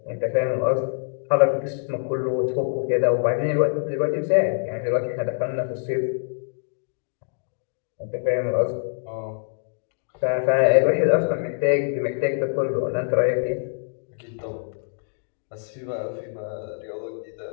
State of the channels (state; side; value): silent; right; digital silence